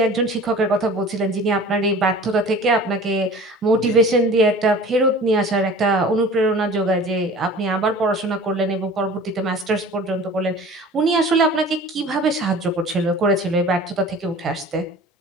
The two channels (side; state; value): both; normal; correlation 0.42